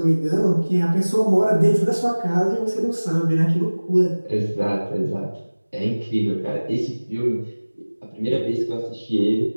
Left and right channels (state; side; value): inverted; both; correlation -1.00